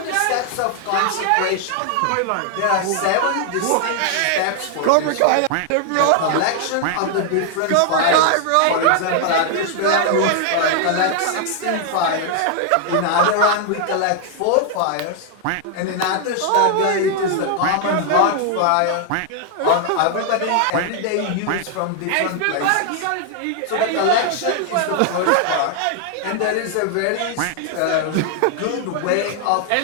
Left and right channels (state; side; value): different; both; correlation 0.00